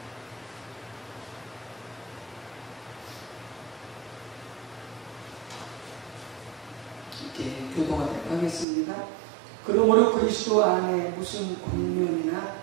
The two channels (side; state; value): left; drops out; at 8.7 s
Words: 이렇게 교독하도록 하겠습니다. 그러므로 그리스도 안에 무슨 권면이나